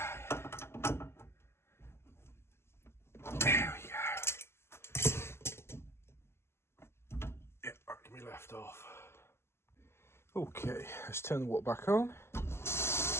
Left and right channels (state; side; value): late; right; 0.12 ms